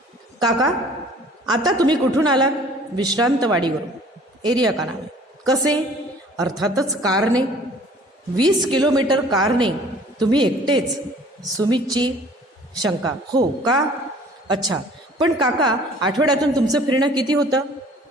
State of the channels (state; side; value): normal; both; correlation 0.51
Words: काका आता तुम्ही कुठून आलात, विश्रांतवाडीवरून. एरिया का नाव आहे. कसे, अर्थातच कारने. 20 किलोमीटर कारने. तुम्ही एकटेच, सुमितची शंका. हो का, अच्छा, पण काका आठवड्यातून तुमचं फिरणं किती होतं.